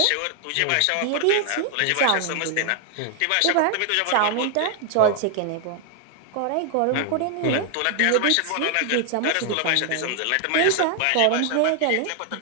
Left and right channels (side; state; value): both; different; correlation 0.00